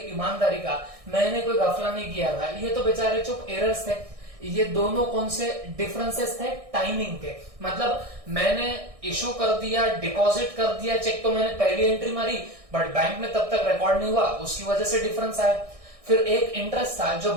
ईमानदारी का, मैंने कोई घपला नहीं किया था। ये तो बेचारे चुप एरर्स थे। ये दोनों कौन से डिफरेंसेस थे? टाइमिंग के। मतलब मैंने इशू कर दिया, डिपॉजिट कर दिया चेक, तो मैंने पहली एंट्री मारी, बट बैंक में तब तक रिकॉर्ड नहीं हुआ, उसकी वजह से डिफरेंस आया। फिर एक इंटरेस्ट था जो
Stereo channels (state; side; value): late; left; 1.6 ms